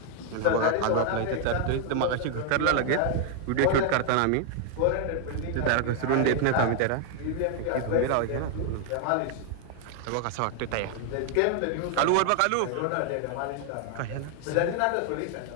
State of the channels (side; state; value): both; different; correlation 0.00